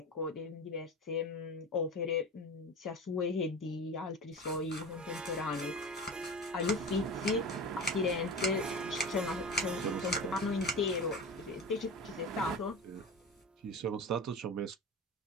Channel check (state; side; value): normal; both; correlation 0.30